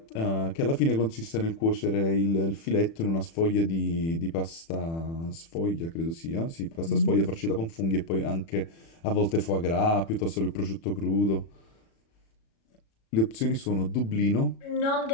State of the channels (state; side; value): late; right; 36 ms